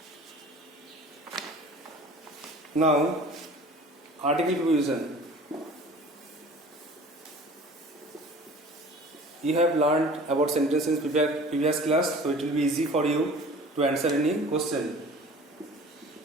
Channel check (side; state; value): both; normal; correlation 0.44